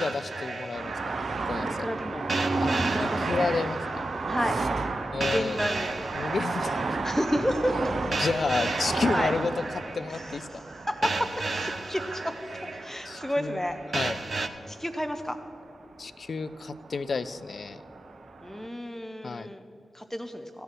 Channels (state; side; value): normal; both; correlation 0.90